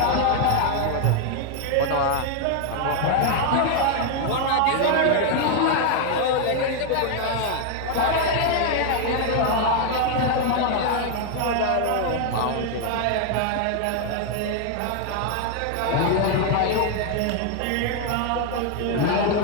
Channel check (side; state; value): both; different; correlation 0.00